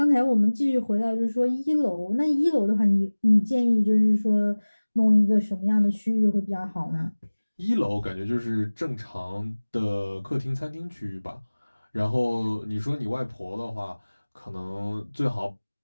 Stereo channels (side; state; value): both; inverted; correlation -1.00